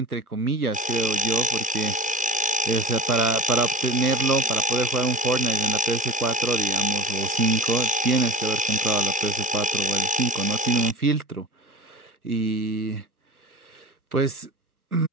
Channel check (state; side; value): normal; both; correlation 0.32